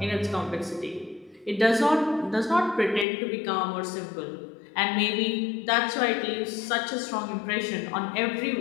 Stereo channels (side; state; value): right; drops out; at 3.1 s